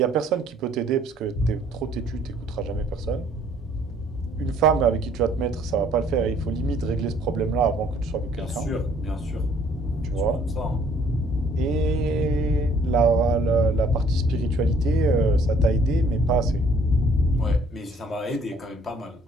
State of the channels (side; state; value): both; normal; correlation 0.60